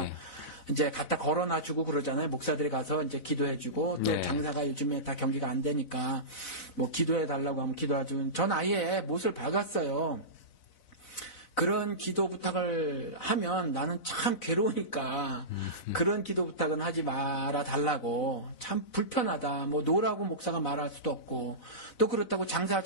이제 갖다 걸어놔 주고 그러잖아요. 목사들이 가서 이제 기도해 주고, 또 장사가 요즘에 다 경기가 안 되니까, 기도해 달라고 하면 기도하죠. 전 아예 못을 박았어요. 그런 기도 부탁을 하면 나는 참 괴로우니까 그런 기도 부탁은 하지 말아 달라고 참 불편하다. 노라고 목사가 말할 수도 없고 또 그렇다고 장사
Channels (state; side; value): late; right; 4.0 ms